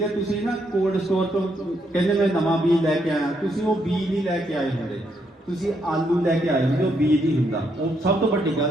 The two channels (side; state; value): both; normal; correlation 0.76